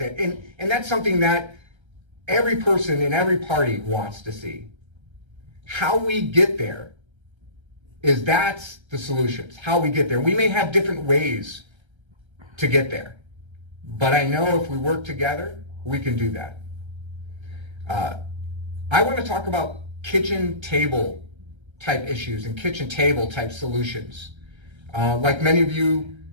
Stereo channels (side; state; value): left; late; 1.3 ms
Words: And that's something that every person in every party wants to see. How we get there that's the solutions, how we get there. We may have different ways to get there, but I know if we work together, we can do that. I want to talk about kitchen table type issues and kitchen table type solutions. Like many of you,